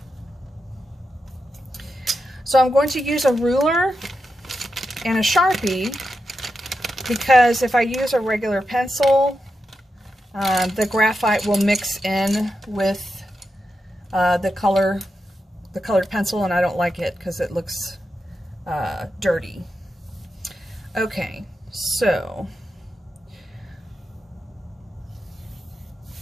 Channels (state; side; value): normal; both; correlation 0.88